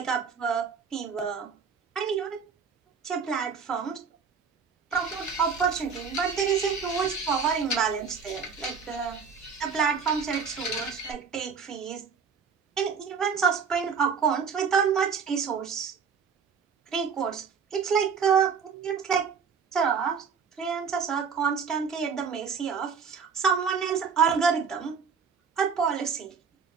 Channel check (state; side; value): quieter; left; 6.1 dB